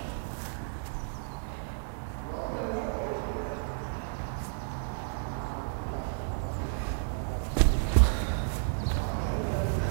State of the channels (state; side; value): silent; left; 57 dB below the other